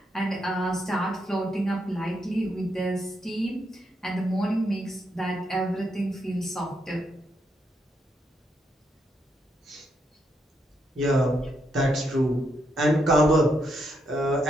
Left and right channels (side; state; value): both; normal; correlation 0.79